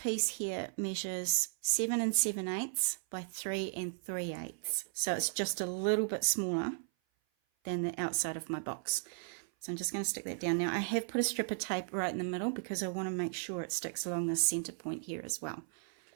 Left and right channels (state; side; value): silent; left; 54 dB below the other